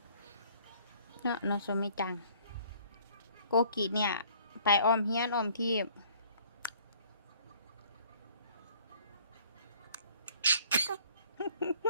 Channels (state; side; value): inverted; both; correlation -0.56